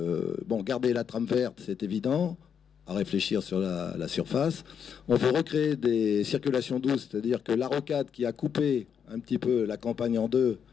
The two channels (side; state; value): right; quieter; 7.6 dB